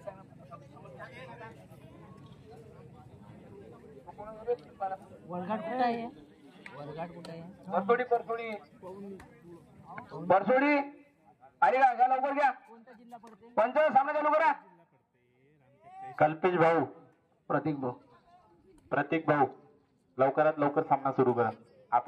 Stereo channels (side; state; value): both; identical; correlation 1.00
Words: वरघाट कुठं आहे? वरघाट कुठं आहे? परसोडी आणि घ्या लवकर घ्या. कोणता जिल्हा पडते? पंच सामना चालू करा. कल्पेश भाऊ, प्रतीक भाऊ लवकरात लवकर सामना सुरू करा.